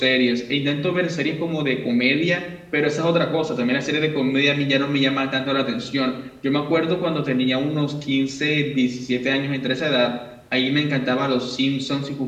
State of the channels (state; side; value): identical; both; correlation 1.00